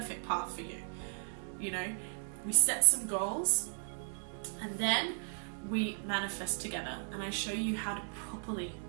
path for you. You know, we set some goals and then we manifest together, and I show you how to properly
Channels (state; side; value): silent; left; digital silence